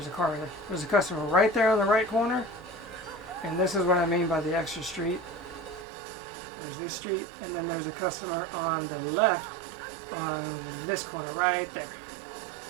a car there. There's a customer right there on the right corner, and this is what I mean by the extra street. There's this street, and then there's a customer on the left on this corner right there.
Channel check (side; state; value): left; drops out; at 5.9 s